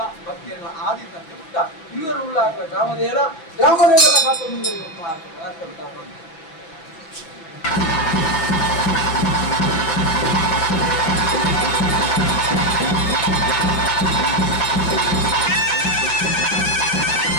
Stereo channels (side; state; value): right; late; 6.2 ms